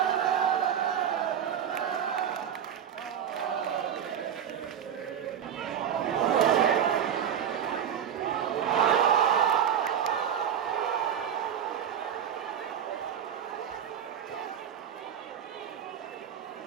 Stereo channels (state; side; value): quieter; left; 8.9 dB